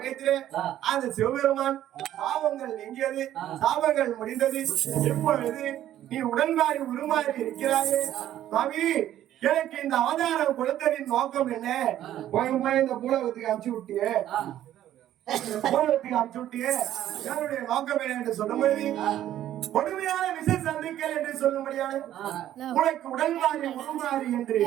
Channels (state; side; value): quieter; left; 12.2 dB